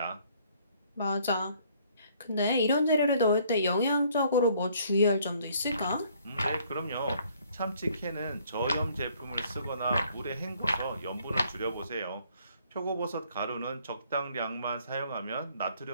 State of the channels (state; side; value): inverted; both; correlation -0.62